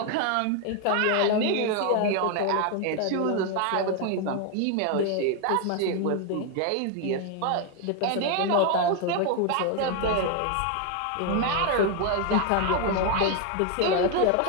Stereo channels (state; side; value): different; both; correlation 0.01